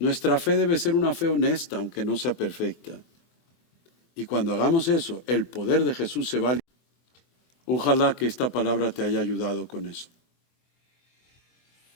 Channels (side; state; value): right; late; 24 ms